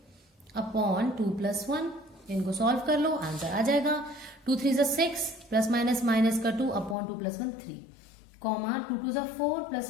अपॉन 2 प्लस 1, इनको सॉल्व कर लो, आंसर आ जाएगा 2 3 6 प्लस माइनस का 2 upon 2 plus 1 3, comma 2 2 4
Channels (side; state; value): right; drops out; at 7.0 s